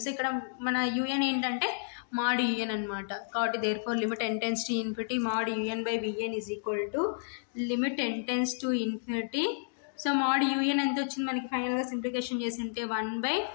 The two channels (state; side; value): silent; right; digital silence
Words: So ఇక్కడ మన un ఏంటంటే mod un అనమాట కాబట్టి therefore limit n tends to infinity mod un by vn is equal to limit n tends to infinity. So mod un ఎంత వచ్చింది మనకి ఫైనల్గా సింప్లికేషన్ చేసి ఉంటే 1 by